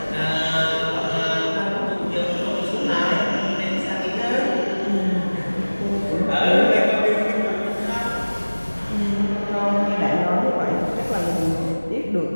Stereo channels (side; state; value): both; inverted; correlation -1.00